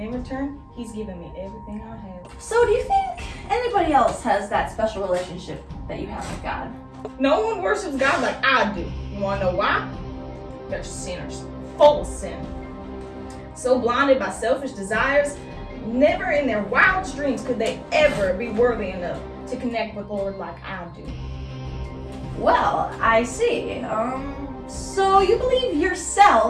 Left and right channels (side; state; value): both; identical; correlation 1.00